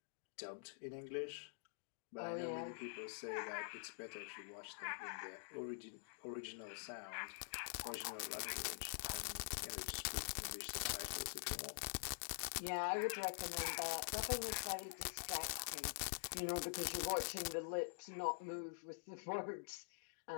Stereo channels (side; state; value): right; silent; digital silence